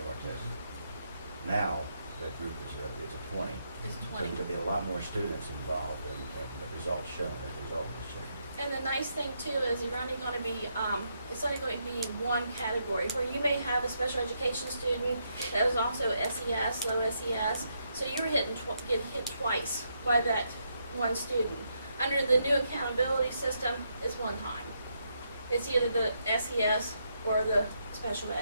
weren't tested. Now, that group is it's a 20. It's So 20. there'll be a lot more students involved in the results shown as a result of this change. And the nice thing too is you're only going to be, it's only going to be one category where you may have a special education student that was also SES, low SES, so you're get hit twice by that one student. Under the new accountability system, it's one time. It's either the SES or the special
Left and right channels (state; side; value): inverted; both; correlation -0.79